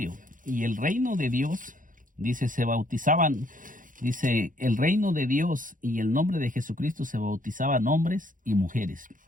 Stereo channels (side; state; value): left; late; 0.39 ms